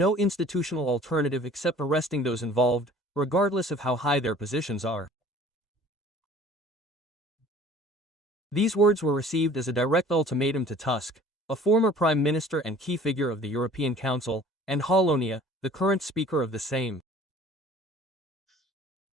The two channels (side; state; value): both; normal; correlation 0.49